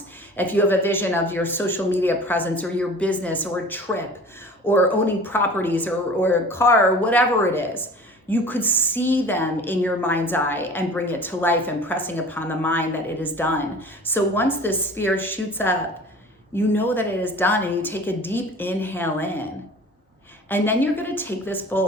if you have a vision of your social media presence or your business or a trip or owning properties or a car or whatever it is, you could see them in your mind's eye and bring it to life, impressing upon the mind that it is done. So once this sphere shoots up, you know that it is done, and you take a deep inhale in. And then you're going to take this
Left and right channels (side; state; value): both; normal; correlation 0.42